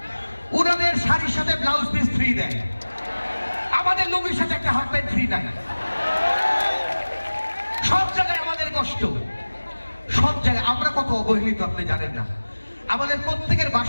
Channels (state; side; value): inverted; both; correlation -1.00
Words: ওনাদের শাড়ির সাথে ব্লাউজ পিস ফ্রি দেয়, আমাদের লুঙ্গির সাথে একটা হাফ প্যান্ট ফ্রি নাই। সব জায়গায় আমাদের কষ্ট, সব জায়গায় আমরা কত অবহেলিত আপনি জানেন না। আমাদের প্রত্যেকের